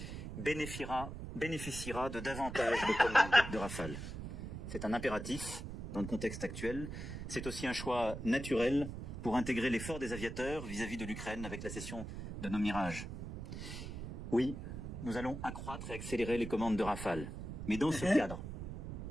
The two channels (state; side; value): noise; right; rumble, 7 dB below the sound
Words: bénéficiera de davantage de commandes de Rafale. C'est un impératif dans le contexte actuel. C'est aussi un choix naturel pour intégrer l'effort des aviateurs vis-à-vis de l'Ukraine avec la cession de nos Mirages. Oui, nous allons accroître et accélérer les commandes de Rafale. Mais dans ce cadre,